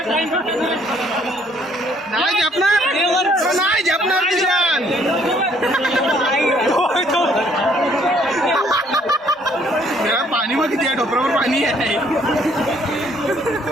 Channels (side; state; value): both; normal; correlation 0.64